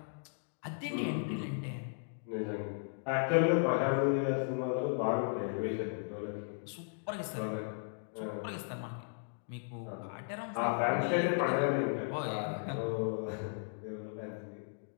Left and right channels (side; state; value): right; silent; digital silence